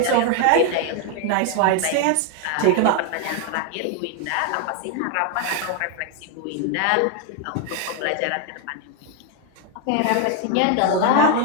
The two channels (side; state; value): both; different; correlation 0.01